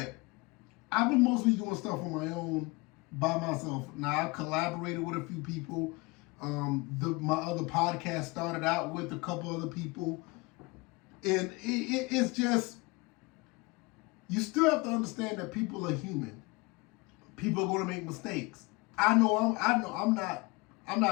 I've been mostly doing stuff on my own by myself. Now, I collaborated with a few people. My other podcast started out with a couple other people. And it's just, you still have to understand that people are human. People are going to make mistakes. I'm not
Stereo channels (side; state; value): right; quieter; 25.5 dB